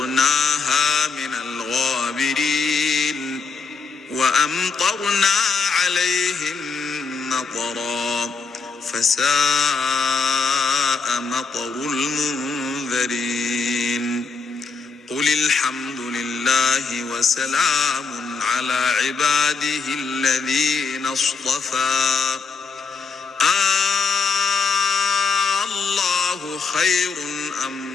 من الغابرين وأمطرنا عليهم مطرا فساء مطر المنذرين قل الحمد لله وسلام على عباده الذين اصطفى الله خير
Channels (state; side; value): quieter; right; 4.8 dB